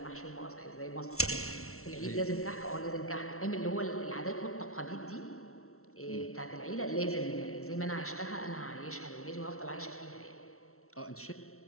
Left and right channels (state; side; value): late; right; 0.63 ms